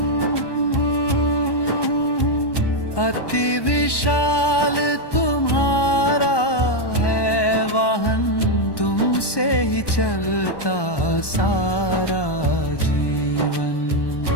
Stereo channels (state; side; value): late; right; 1.1 ms